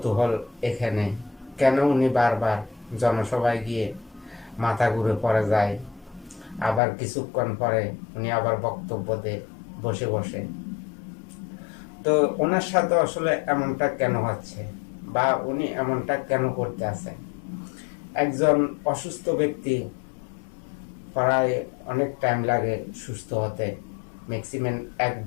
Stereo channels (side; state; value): right; drops out; at 6.8 s